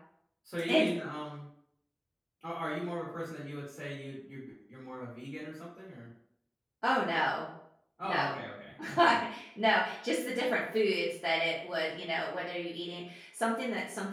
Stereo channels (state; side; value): identical; both; correlation 1.00